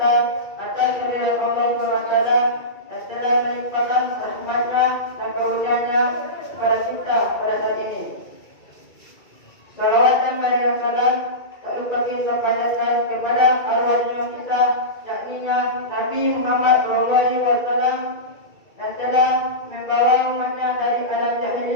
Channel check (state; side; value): late; right; 2.3 ms